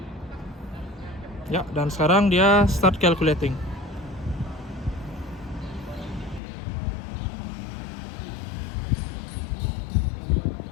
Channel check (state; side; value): drops out; right; at 6.4 s